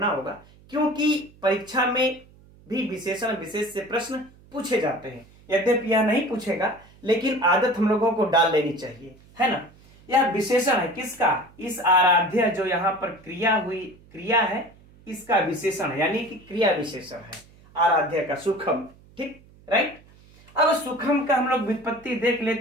होगा, क्योंकि परीक्षा में भी विशेषण विशेष से प्रश्न पूछे जाते हैं। यद्यपि यह नहीं पूछेगा, लेकिन आदत हम लोगों को डाल लेनी चाहिए, है ना। यह विशेषण है किसका, इस आराध्य जो यहाँ पर क्रिया है, इसका विशेषण है, यानी कि क्रिया विशेषण है आराध्य का, सुखम। ठीक, राइट। अब सुखम का हम लोग व्युत्पत्ति देख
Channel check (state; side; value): noise; right; hum, 26 dB below the sound